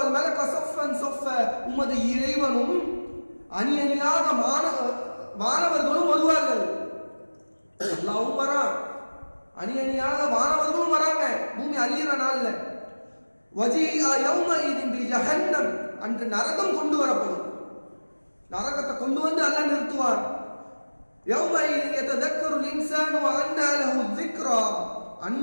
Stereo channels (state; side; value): inverted; both; correlation -1.00